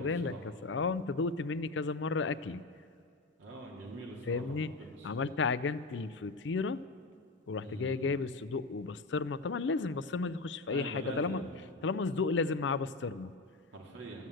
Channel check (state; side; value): quieter; right; 3.5 dB